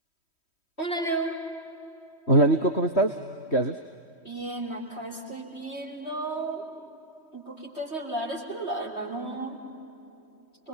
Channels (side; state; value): right; late; 3.1 ms